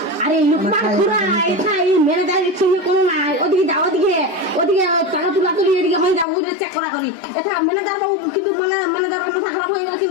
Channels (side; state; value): right; drops out; at 6.2 s